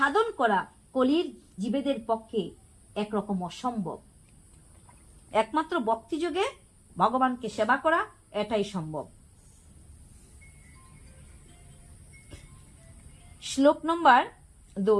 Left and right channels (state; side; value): identical; both; correlation 1.00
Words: করা কলির জীবেদের পক্ষে একরকম অসম্ভব। একমাত্র ভক্তি যোগে ভগবানকে সেবা করা এটাই সম্ভব। শ্লোক নম্বর